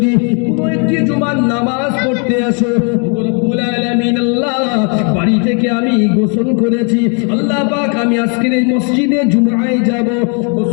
কোনো একটি জুমার নামাজ পড়তে আসো, রব্বুল আলামিন আল্লাহ, বাড়ি থেকে আমি গোসল করেছি, আল্লাহ পাক আমি আজকের এই মসজিদে জুমায় যাব।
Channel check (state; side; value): quieter; right; 37.6 dB